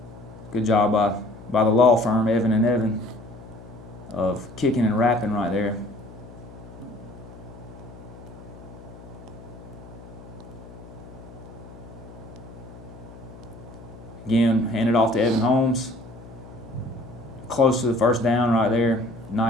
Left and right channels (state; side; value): noise; left; hum, 17 dB below the sound